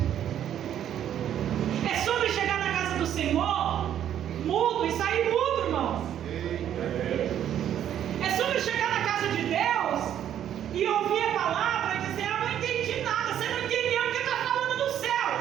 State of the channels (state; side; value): quieter; left; 10.4 dB